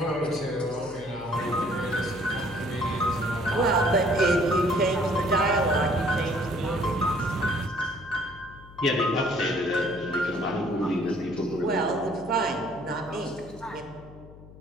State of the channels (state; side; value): noise; left; hum, 19 dB below the sound